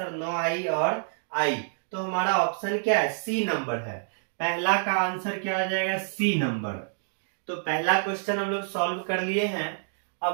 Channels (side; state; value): left; silent; digital silence